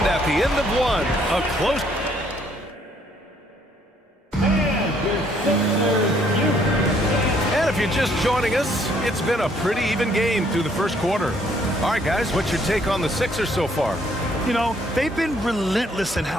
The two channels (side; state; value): both; normal; correlation 0.66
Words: at the end of one, a close. And if you're just joining us, it's been a pretty even game through the first quarter. All right, guys, what's your take on the Sixers so far? You know, they've been relentless in